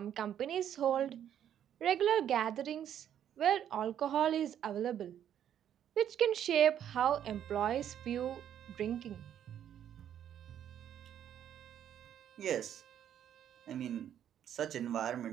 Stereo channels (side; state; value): left; quieter; 10.0 dB